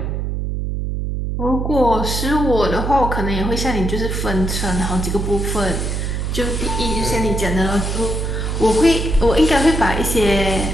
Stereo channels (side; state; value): right; noise; hum, 2 dB below the sound